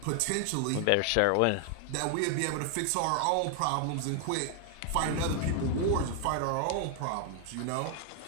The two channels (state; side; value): different; both; correlation 0.00